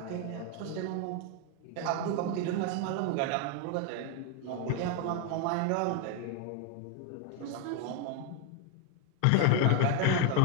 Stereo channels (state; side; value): different; both; correlation 0.01